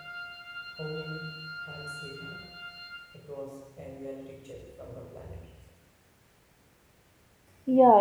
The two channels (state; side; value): identical; both; correlation 1.00